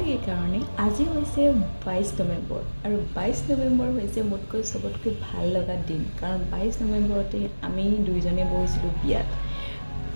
এই কাৰণে আজি হৈছে 22 নৱেম্বৰ আৰু 22 নৱেম্বৰ হৈছে মোতকৈ সবতকৈ ভাল লগা দিন কাৰণ 22 নৱেম্বৰতে আমি দুইজনে বহিছিলোঁ বিয়াত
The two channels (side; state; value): both; inverted; correlation -1.00